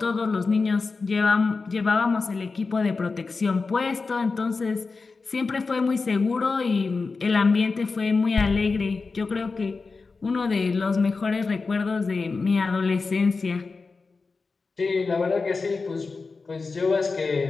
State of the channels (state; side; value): quieter; right; 4.2 dB